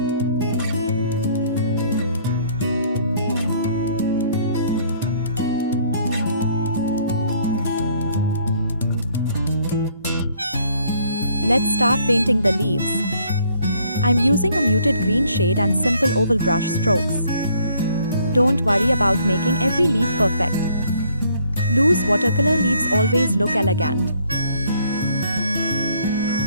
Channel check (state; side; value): inverted; both; correlation -0.64